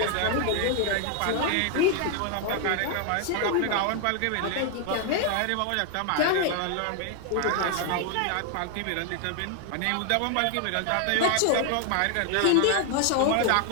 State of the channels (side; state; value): both; different; correlation 0.00